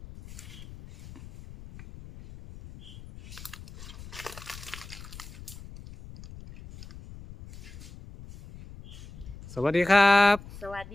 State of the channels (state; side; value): noise; left; rumble, 16 dB below the sound